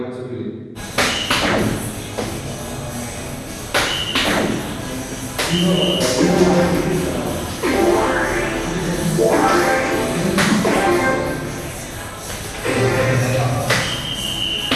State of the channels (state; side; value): identical; both; correlation 1.00